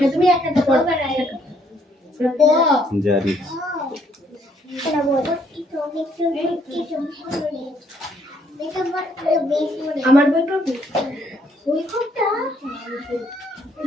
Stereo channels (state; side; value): normal; both; correlation 0.68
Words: তুমি একটা জারি আমার বইটা ওই কোনটা